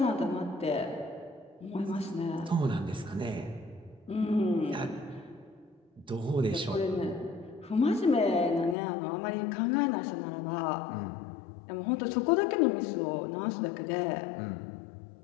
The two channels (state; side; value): drops out; right; at 8.8 s